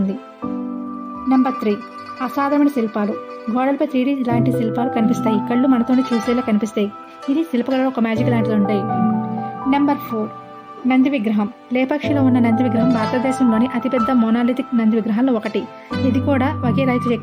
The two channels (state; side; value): identical; both; correlation 1.00